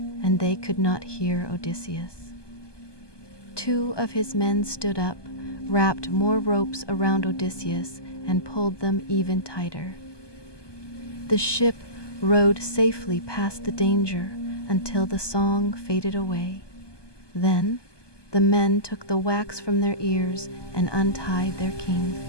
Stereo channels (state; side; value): late; right; 1.2 ms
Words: and they could not hear Odysseus. 2 of his men stood up, wrapped more ropes around Odysseus, and pulled them even tighter. The ship rode safely past the danger until the song faded away. Then the men took the wax from their ears and untied their king.